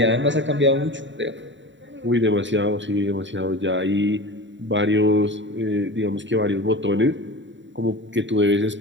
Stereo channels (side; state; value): left; late; 0.54 ms